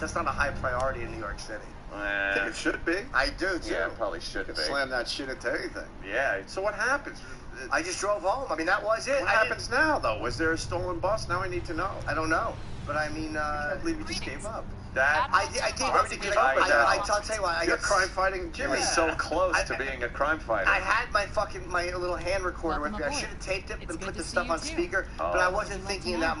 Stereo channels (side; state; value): both; identical; correlation 1.00